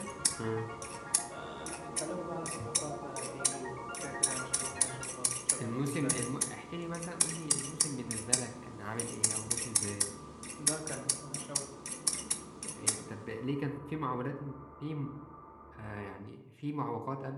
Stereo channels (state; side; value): identical; both; correlation 1.00